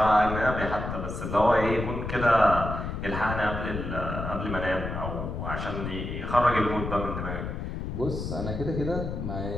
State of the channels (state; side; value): noise; left; rumble, 5 dB below the sound